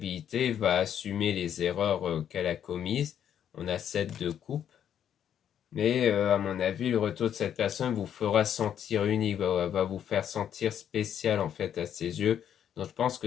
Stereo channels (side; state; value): right; quieter; 9.4 dB